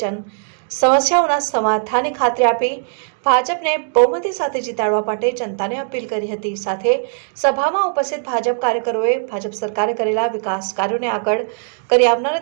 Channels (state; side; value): silent; left; digital silence